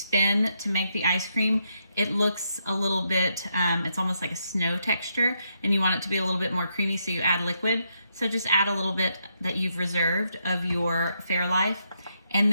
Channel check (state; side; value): inverted; both; correlation -0.80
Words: to make the ice cream, it looks a little bit, it's almost like a snow texture, and you want it to be a little bit more creamy, so you add liquid. So just add a little bit that you've reserved of your Fairlife, and